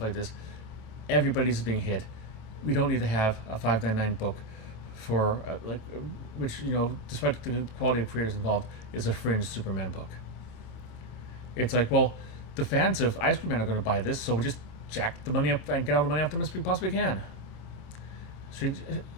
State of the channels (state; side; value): late; right; 28 ms